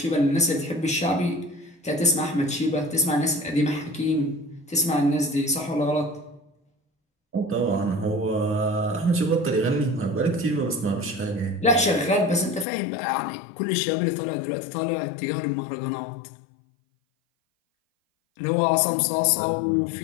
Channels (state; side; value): drops out; right; at 12.7 s